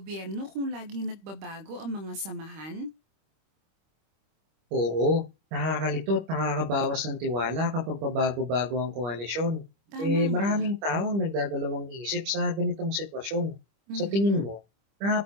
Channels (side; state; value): left; late; 25 ms